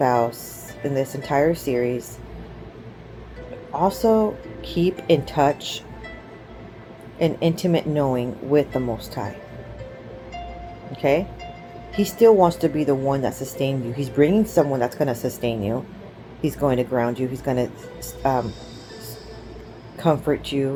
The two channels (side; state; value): both; identical; correlation 1.00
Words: in this entire series, also keep in touch and intimate knowing with the Most High. Okay? He still wants to be the one that sustains you. He's bringing someone that's going to sustain you. He's going to ground you. He's going to comfort